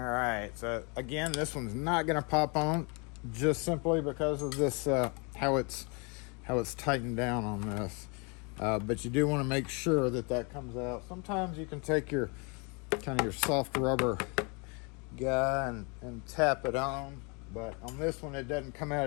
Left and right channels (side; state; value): right; quieter; 32.6 dB